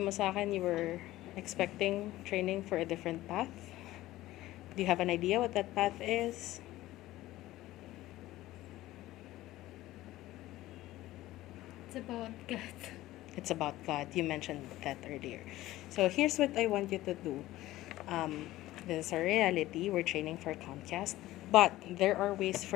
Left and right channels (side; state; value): right; quieter; 16.2 dB